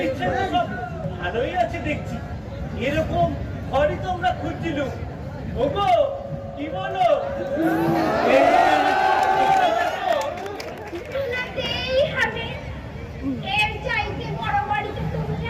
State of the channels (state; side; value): identical; both; correlation 1.00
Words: ইচ্ছায় তো সব ভালোই আছে দেখছি। এরকম ঘরই তো আমরা খুঁজছিলাম। ওগো কি বলো? শোনাতেই হবে। এর চাইতে বড় বাড়িতে তুমি